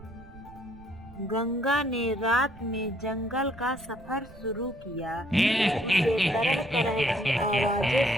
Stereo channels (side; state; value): right; noise; rumble, 20 dB below the sound